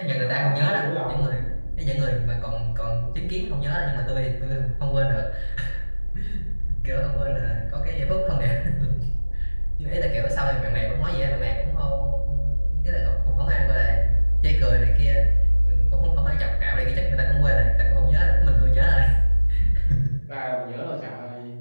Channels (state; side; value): inverted; both; correlation -1.00